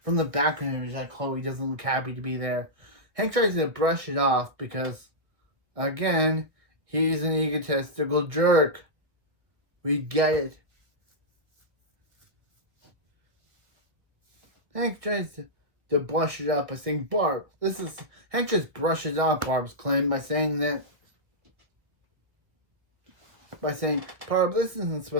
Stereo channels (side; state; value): left; late; 1.2 ms